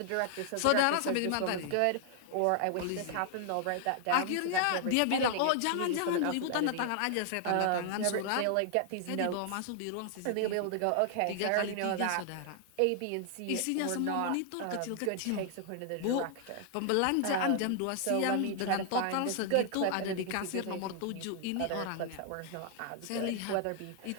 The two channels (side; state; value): both; different; correlation 0.00